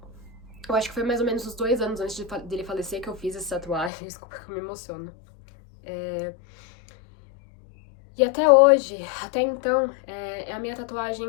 Eu acho que foi mais ou menos uns 2 anos antes dele falecer que eu fiz essa tatuagem. Desculpa que eu me emociono. E até hoje, até então, é a minha tatuagem,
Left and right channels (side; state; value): right; drops out; at 3.9 s